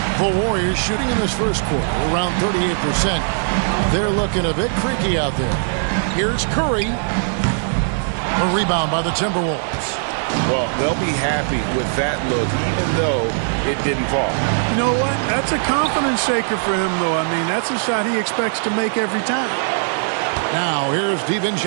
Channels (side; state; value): left; silent; 66 dB below the other